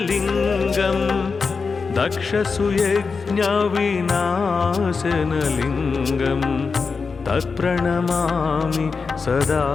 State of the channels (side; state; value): right; quieter; 4.9 dB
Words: दक्षसुयज्ञविनाशनलिङ्गं तत्प्रणमामि सदा